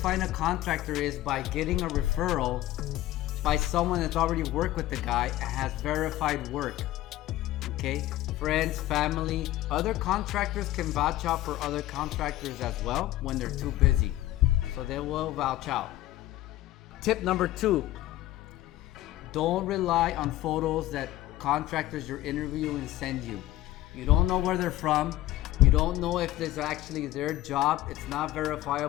a contractor is by getting a referral by someone that's already worked with the guy and has verified work. Okay, friends, family, other contractors can vouch out for other contractors as well when they're too busy, so they will vouch out. Tip number 2, don't rely on photos that contractors you're interviewing send you. You don't know where they're from. You don't know if this is actually their job. It's not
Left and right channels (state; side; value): quieter; right; 15.3 dB